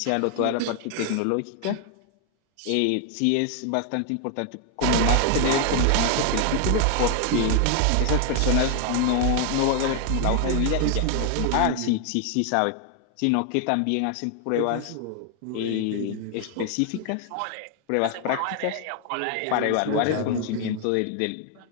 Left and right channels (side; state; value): both; different; correlation 0.00